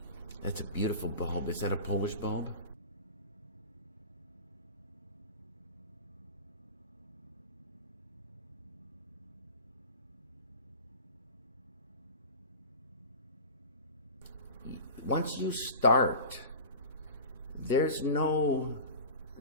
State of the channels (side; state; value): both; inverted; correlation -0.34